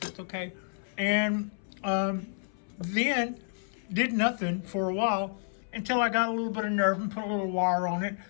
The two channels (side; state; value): right; silent; 58 dB below the other